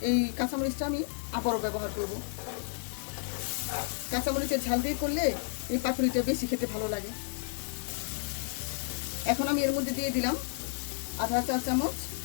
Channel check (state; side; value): silent; right; digital silence